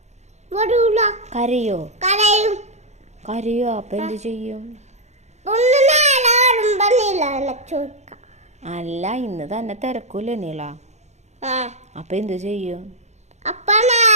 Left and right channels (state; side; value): late; left; 0.33 ms